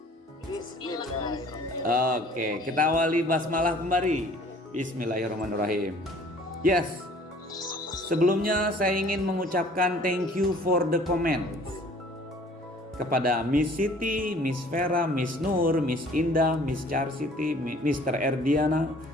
Oke, kita awali basmalah kembali. Bismillahirrahmanirrahim. Yes. Sebelumnya saya ingin mengucapkan thank you for the comments kepada Miss Siti, Miss Vera, Miss Nur, Miss Indah, Miss Charsiti, Mr. Erdiana,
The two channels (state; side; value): normal; both; correlation 0.53